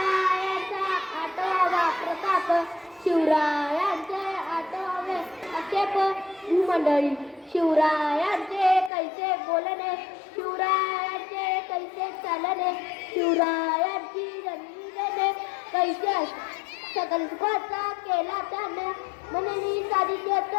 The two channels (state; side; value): drops out; right; at 8.9 s